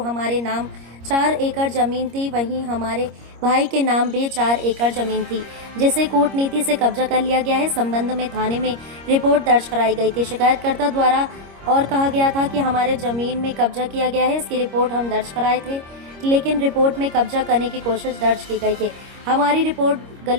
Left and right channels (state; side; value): late; left; 25 ms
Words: हमारे नाम 4 एकड़ जमीन थी, वहीं हमारे भाई के नाम भी 4 एकड़ जमीन थी, जिसे कूटनीति से कब्जा कर लिया गया है। संबंध में थाने में रिपोर्ट दर्ज कराई गई थी शिकायतकर्ता द्वारा और कहा गया था कि हमारे जमीन में कब्जा किया गया है। इसकी रिपोर्ट हम दर्ज कराए थे, लेकिन रिपोर्ट में कब्जा करने की कोशिश दर्ज की गई है। हमारी रिपोर्ट